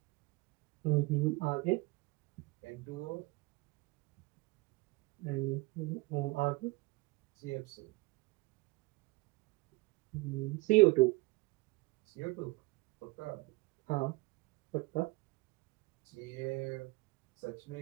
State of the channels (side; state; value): left; quieter; 23.6 dB